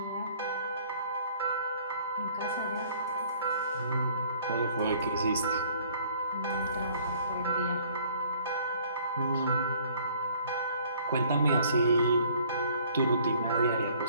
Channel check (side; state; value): both; inverted; correlation -0.57